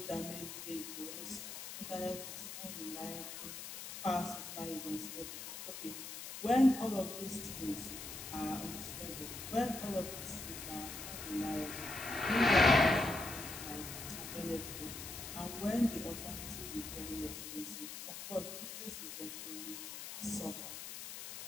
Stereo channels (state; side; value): noise; left; hiss, 9 dB below the sound